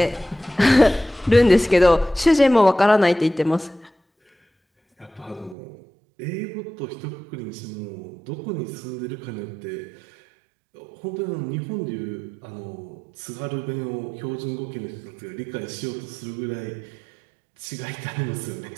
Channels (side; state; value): left; drops out; at 5.6 s